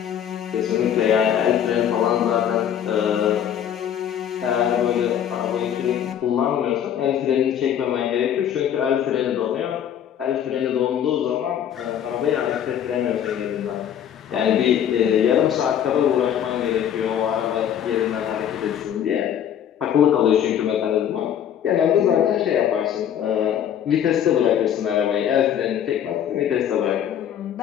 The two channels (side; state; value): right; quieter; 9.6 dB